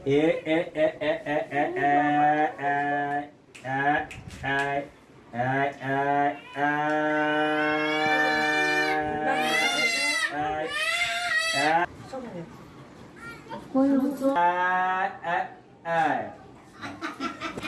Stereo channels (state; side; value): identical; both; correlation 1.00